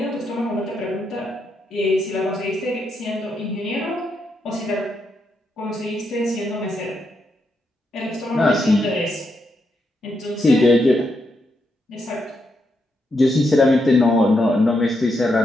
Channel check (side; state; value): both; normal; correlation 0.81